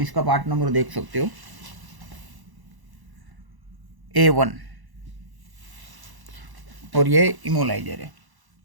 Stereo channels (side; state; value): left; late; 1.0 ms